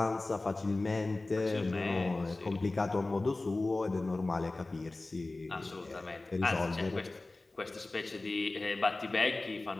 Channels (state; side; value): quieter; right; 3.1 dB